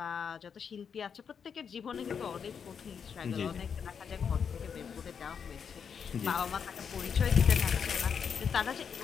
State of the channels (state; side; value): quieter; right; 6.9 dB